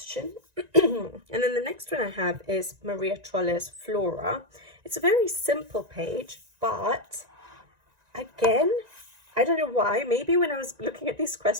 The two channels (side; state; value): left; late; 1.9 ms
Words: And then the next one I have is Maria Troller's Flora. It's a very simple page, but again, I don't know why. Maybe when I was looking at these